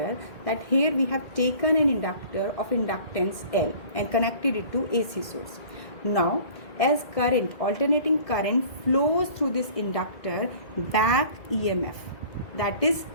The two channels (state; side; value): late; right; 2.1 ms